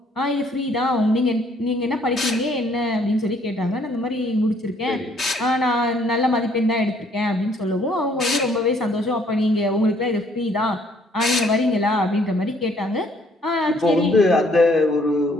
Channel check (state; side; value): normal; both; correlation 0.64